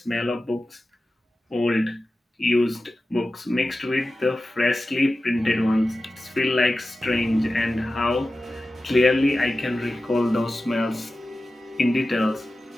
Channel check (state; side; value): normal; both; correlation 0.94